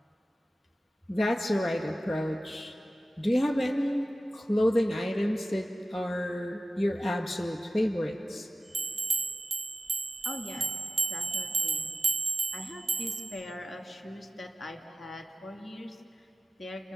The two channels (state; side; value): normal; both; correlation 0.95